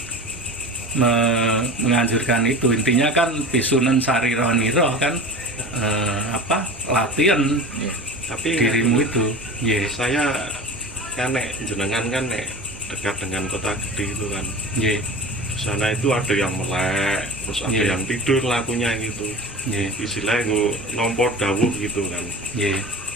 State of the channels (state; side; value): normal; both; correlation 0.34